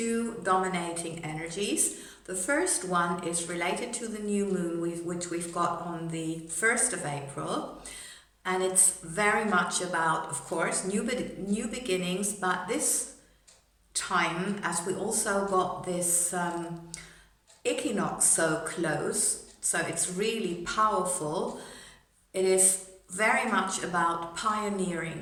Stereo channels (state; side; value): identical; both; correlation 1.00